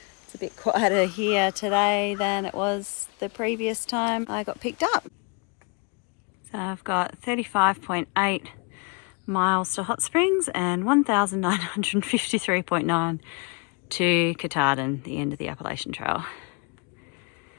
It's a bit quieter here today than it was the previous time I got picked up. So I've got 35.8 miles to Hot Springs and 1,953.9 to Katahdin, the end of the Appalachian Trail.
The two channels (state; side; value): quieter; right; 32.3 dB